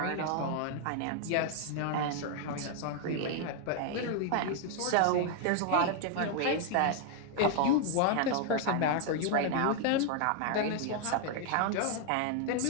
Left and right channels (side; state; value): both; different; correlation 0.00